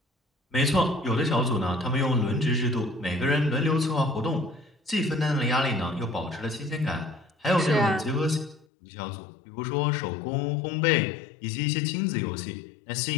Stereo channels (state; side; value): drops out; right; at 8.7 s